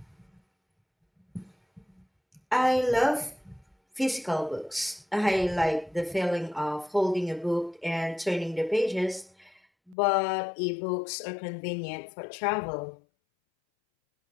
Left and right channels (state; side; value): drops out; right; at 10.0 s